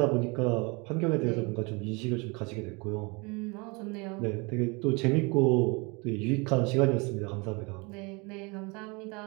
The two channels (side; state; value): left; quieter; 28.8 dB